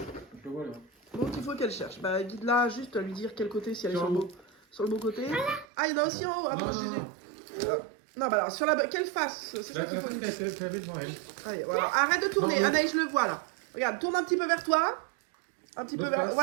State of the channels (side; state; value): left; drops out; at 5.7 s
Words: le vois là. Donc, il faut qu'elle cherche. Bah, guide-la juste à lui dire quel côté, si elle est Sur sur le beau côté. Ah, il y en a aussi en haut. Ah, Non, bon, non, non. Non, bah alors, sur quelle face? C'est ça qu'il faut. Tu l'avais devant elle. Allez, voilà. Arrête de tourner. Non, non. Anaïs, je le vois là. Regarde, tourne un petit peu vers toi. Un petit peu L'autre vers. face,